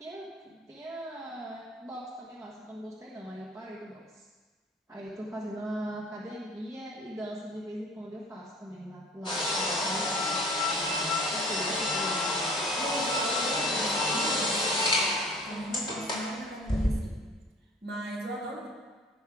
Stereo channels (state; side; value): normal; both; correlation 0.47